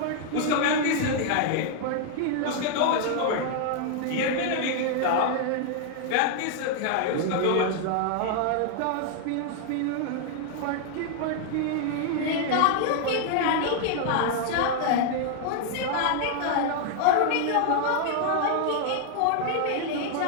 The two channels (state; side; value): different; both; correlation 0.00